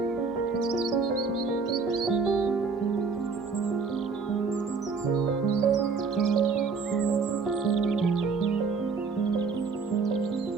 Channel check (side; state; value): left; quieter; 4.8 dB